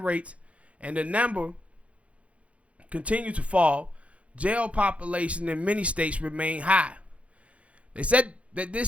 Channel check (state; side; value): late; left; 0.063 ms